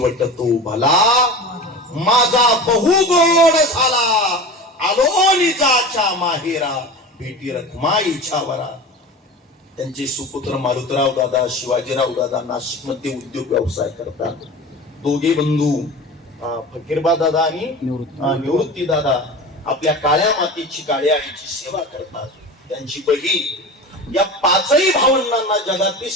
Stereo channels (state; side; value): normal; both; correlation 0.33